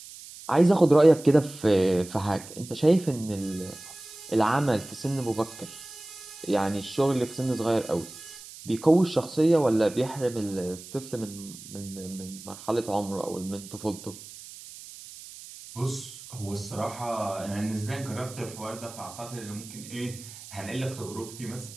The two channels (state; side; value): noise; right; hiss, 16 dB below the sound